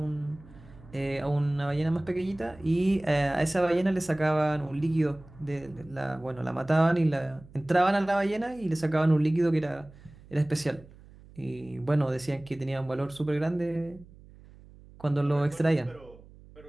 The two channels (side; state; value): right; noise; hum, 22 dB below the sound